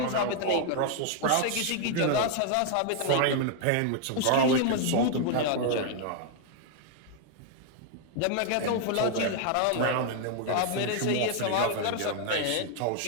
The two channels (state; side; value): different; both; correlation 0.00